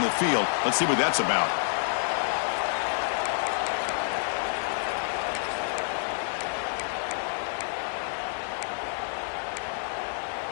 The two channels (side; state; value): right; silent; digital silence